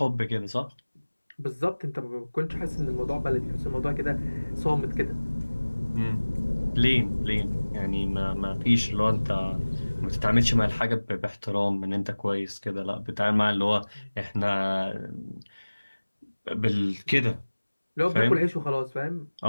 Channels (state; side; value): inverted; both; correlation -1.00